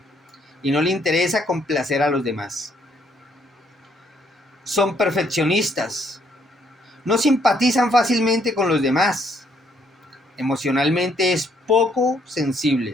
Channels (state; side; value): normal; both; correlation 0.69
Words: y no le interesa complacer a los demás. Son perfeccionistas. No simpatizan fácilmente con los demás. Emocionalmente es poco